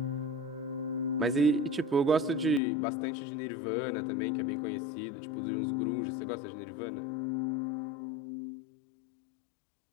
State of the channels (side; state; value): right; drops out; at 2.6 s